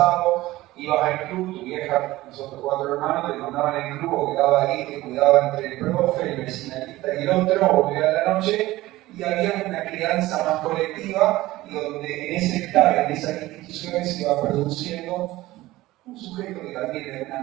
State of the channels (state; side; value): quieter; left; 17.5 dB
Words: ibas al club, tu vieja, nosotros 4 hermanos, te mandaban al club o quedaba ahí, te cuidaba entre el profe, el vecinalista y el otro, o volvía a la noche, y había una crianza más colectiva, y donde en ese estar, en esas instituciones, se iba produciendo un sujeto que también de alguna